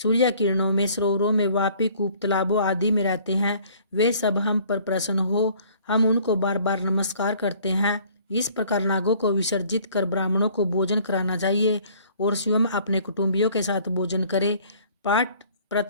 किरणों में, सरोवरों में, वापी, कूप, तालाबों आदि में रहते हैं, वे सब हम पर प्रसन्न हो। हम उनको बार बार नमस्कार करते हैं। इस प्रकार नागों को विसर्जित कर ब्राह्मणों को भोजन कराना चाहिए और स्वयं अपने कुटुंबियों के साथ भोजन करे। पाठ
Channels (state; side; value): inverted; both; correlation -0.56